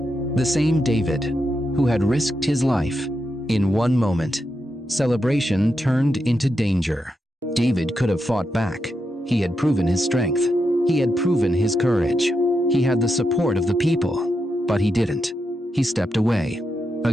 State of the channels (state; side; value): normal; both; correlation 0.85